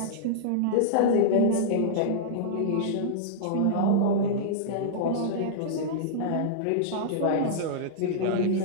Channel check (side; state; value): both; different; correlation -0.02